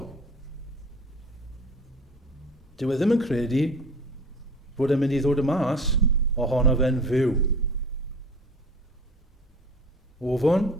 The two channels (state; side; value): normal; both; correlation 0.42